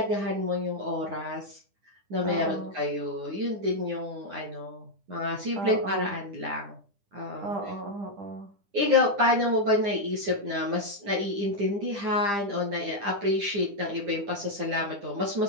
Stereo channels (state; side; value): late; left; 9.9 ms